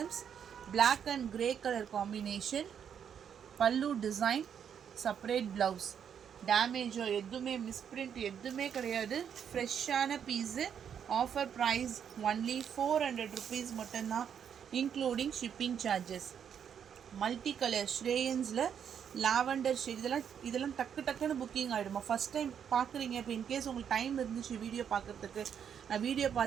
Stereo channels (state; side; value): quieter; left; 8.1 dB